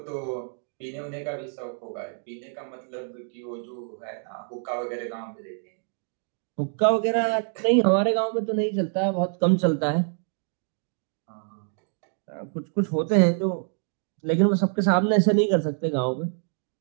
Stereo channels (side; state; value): left; silent; 60 dB below the other